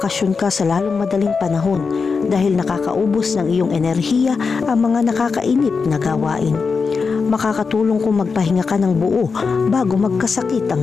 ka sa lalong madaling panahon dahil nakakaubos ng iyong enerhiya ang mga nakakainip na gawain. Makakatulong kung magpahinga ka ng buo bago magkasakit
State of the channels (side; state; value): right; quieter; 5.0 dB